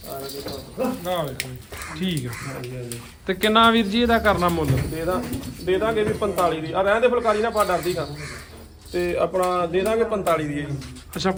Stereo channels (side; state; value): both; identical; correlation 1.00